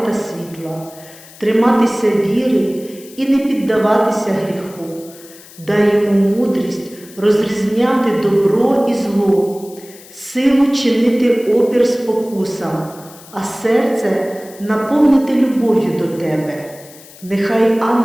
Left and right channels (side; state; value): left; noise; hiss, 21 dB below the sound